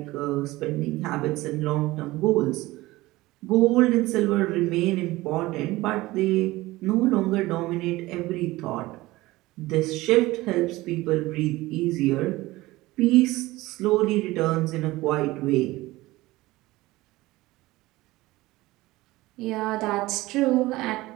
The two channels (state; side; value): quieter; left; 19.1 dB